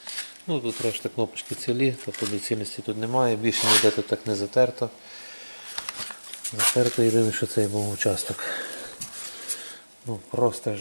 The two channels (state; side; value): inverted; both; correlation -1.00